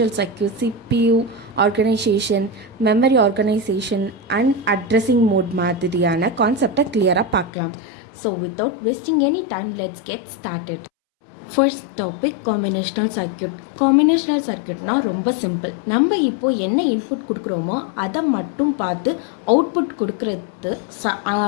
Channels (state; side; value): drops out; right; at 7.5 s